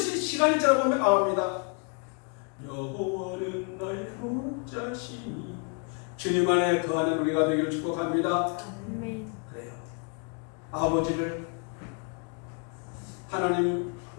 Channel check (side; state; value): right; quieter; 37.0 dB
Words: 시간이 지나보면 나옵니다. 여호와는 나의 목자시니. 주님 안에 거하는 우리가 되기를 축복합니다. 그래요. 아버지를 하나님